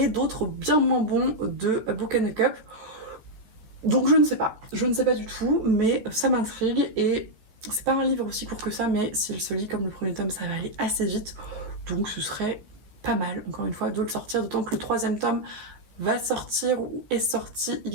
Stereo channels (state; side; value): late; left; 14 ms